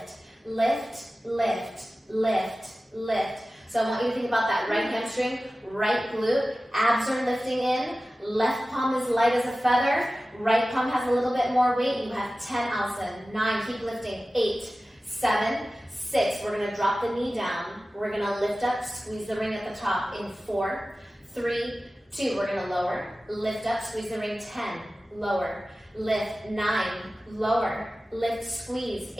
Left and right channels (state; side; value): normal; both; correlation 0.96